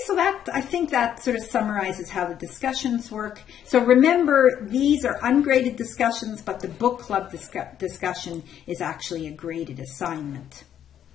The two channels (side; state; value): right; quieter; 9.9 dB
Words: so I think that sort of summarizes how the discussions work. So remember, these are ungraded discussions, but the book club discussion is actually a graded assignment.